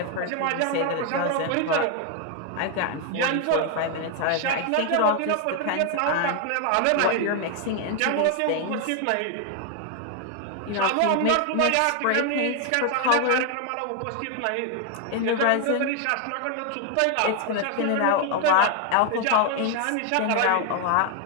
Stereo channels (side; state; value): both; different; correlation 0.00